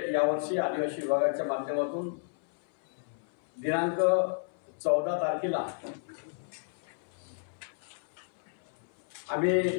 यावर्षी आदिवासी विभागाच्या माध्यमातून दिनांक 14 तारखेला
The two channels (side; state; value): right; silent; 57 dB below the other